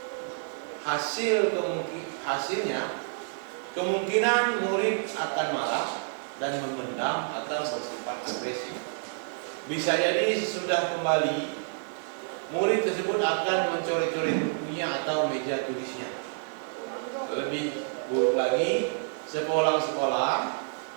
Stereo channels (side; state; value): left; silent; digital silence